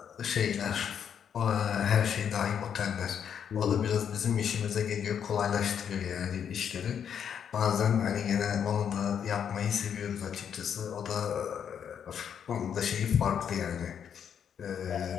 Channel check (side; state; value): right; quieter; 8.2 dB